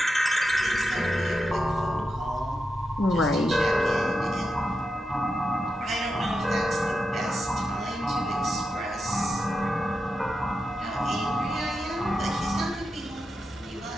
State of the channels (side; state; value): both; normal; correlation 0.88